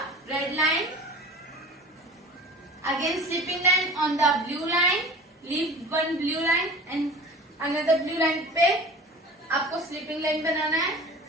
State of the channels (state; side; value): normal; both; correlation 0.40